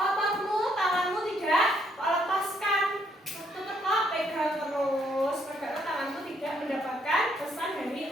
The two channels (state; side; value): normal; both; correlation 0.71